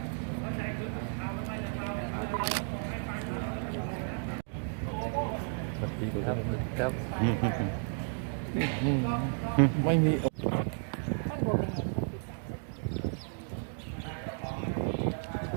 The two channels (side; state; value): left; silent; 56 dB below the other